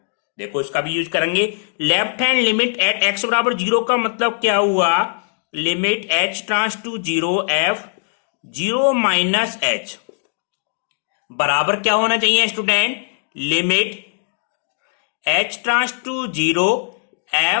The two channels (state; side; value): silent; right; 59 dB below the other